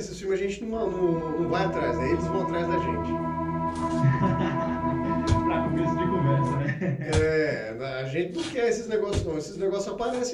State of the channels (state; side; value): identical; both; correlation 1.00